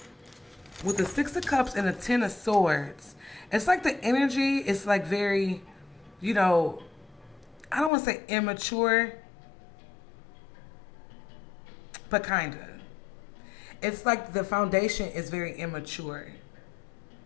with the Six of Cups and the Ten of Swords, it's like the energy is like very, you know, I don't want to say immature, but kind of. It's like the foundation is very immature.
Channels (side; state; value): right; drops out; at 7.9 s